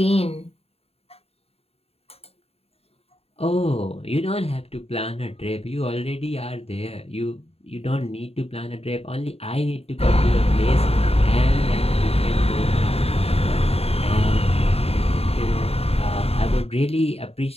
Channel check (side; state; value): right; late; 0.29 ms